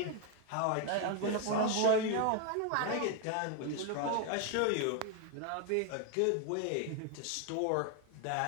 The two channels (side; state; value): both; different; correlation 0.01